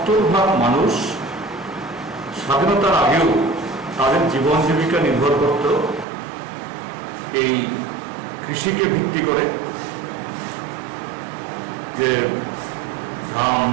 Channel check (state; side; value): drops out; left; at 6.1 s